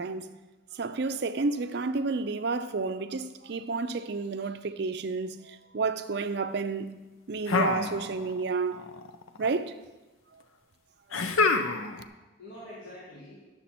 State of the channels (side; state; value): both; normal; correlation 0.07